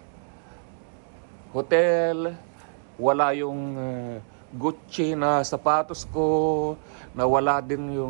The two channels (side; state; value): left; silent; digital silence